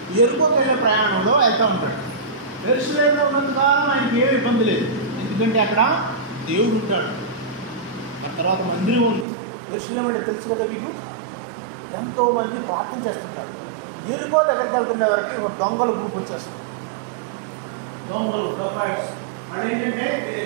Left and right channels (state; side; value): drops out; left; at 9.2 s